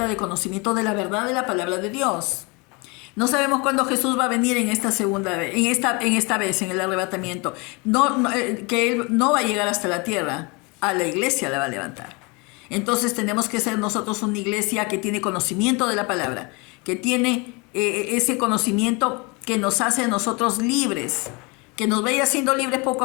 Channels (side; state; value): right; quieter; 28.6 dB